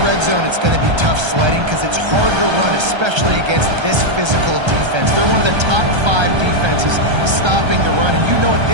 zone, it's going to be tough sledding because it's hard to run, especially against this physical defense. They're one of the top 5 defenses stopping the run, and you know at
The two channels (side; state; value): left; late; 1.3 ms